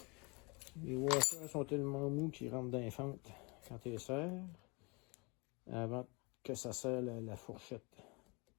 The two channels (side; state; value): right; quieter; 29.4 dB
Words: Les washers sont tellement mous qu'ils rentrent dans les fentes quand tu les serres avant que ça serre la fourchette.